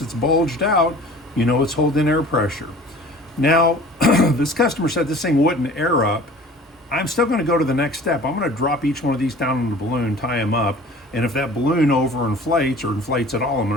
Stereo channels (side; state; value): both; normal; correlation 0.45